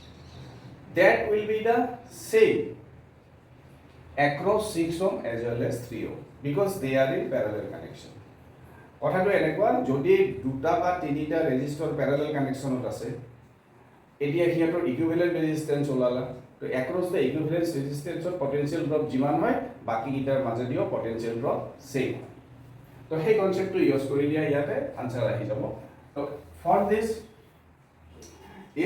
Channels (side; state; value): both; identical; correlation 1.00